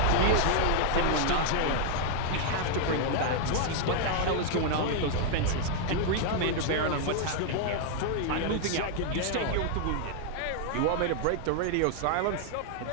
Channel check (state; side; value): different; both; correlation 0.00